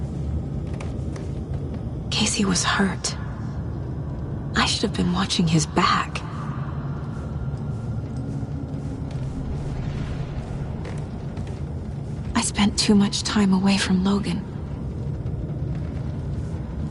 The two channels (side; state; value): both; identical; correlation 1.00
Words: Casey was hurt. I should have been watching his back. I spent too much time away from Logan.